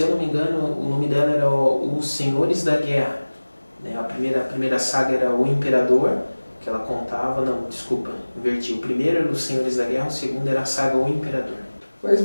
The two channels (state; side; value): inverted; both; correlation -1.00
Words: eu não me engano, o nome dela era Os Senhores da Guerra, né? A primeira saga era O Imperador, que ela contava, não, desculpa, inverti. O primeiro era Os Senhores da Guerra, o segundo era a saga O Imperador. Mas